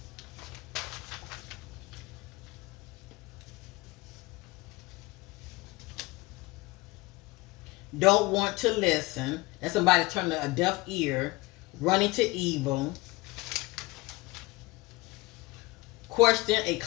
Don't want to listen. That's somebody turning a deaf ear. Running to evil. Question a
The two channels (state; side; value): quieter; right; 21.8 dB